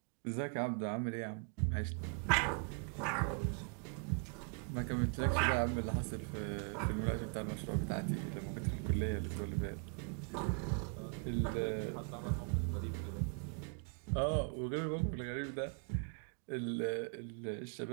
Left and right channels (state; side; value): quieter; left; 38.1 dB